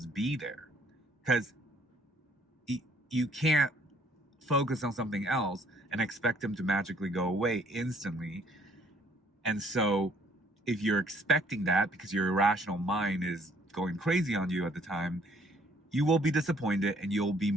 be there. Because you can't focus on something else and expect them to magically go away instantly. And so if you're expecting that because your irrational mind is going crazy on you at the time, you will be disappointed and you'll be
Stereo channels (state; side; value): normal; both; correlation 0.62